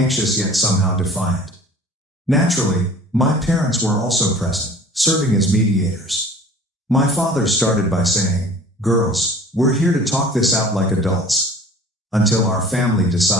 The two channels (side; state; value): both; normal; correlation 0.46